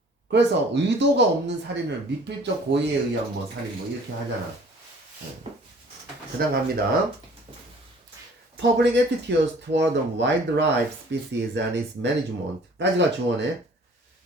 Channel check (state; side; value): normal; both; correlation 0.52